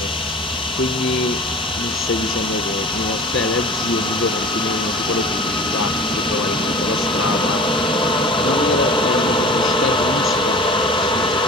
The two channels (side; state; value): both; normal; correlation 0.39